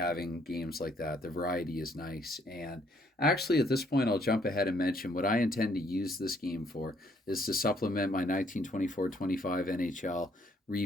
games like that. The variety is nice. And actually, at this point, I'll jump ahead and mention what I intend to use this game for is to supplement my 1924-25 NHL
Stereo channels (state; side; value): normal; both; correlation 0.67